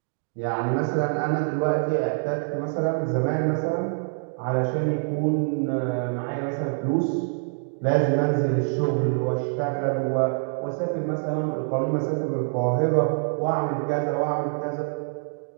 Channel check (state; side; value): silent; left; digital silence